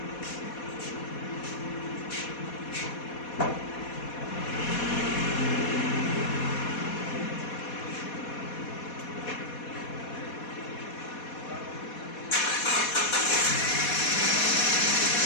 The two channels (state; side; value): late; right; 4.2 ms